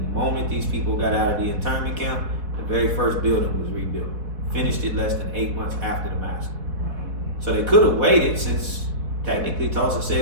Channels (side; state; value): left; late; 4.1 ms